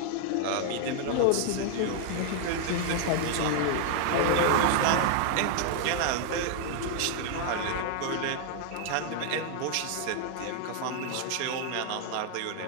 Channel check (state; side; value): different; both; correlation 0.00